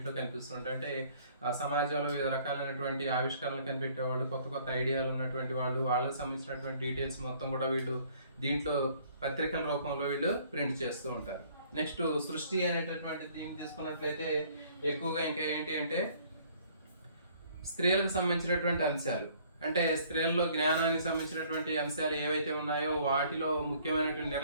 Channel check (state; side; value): inverted; both; correlation -0.59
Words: కనిపిస్తుంటాయి. అంటే సమాజంలో వివిధ రకాలైనటువంటి ఆవిష్కరణలు కనిపెట్టేవాళ్ళు, కొత్త ఐడియాలు ఉన్నటువంటి వాళ్ళు, వాళ్ళకి సంబంధించినటువంటి డీటెయిల్స్ మొత్తం కూడా వీళ్ళు దీంట్లో పత్రికల రూపంలో వీళ్ళు ప్రింట్ చేస్తూ ఉంటారు. నెక్స్ట్ సృష్టి అనేటటువంటి దీన్ని తీసుకున్నట్లయితే ఎక్కువగా ఇంకా ఏంటి అంటే స్త్రీలకు సంబంధించినటువంటి అంశాలు, అంటే స్త్రీల్లో జ్ఞానానికి సంబంధించినటువంటి అంశాలు ఏవైతే ఉన్నాయో వాటిలో ముఖ్యమైనటువంటి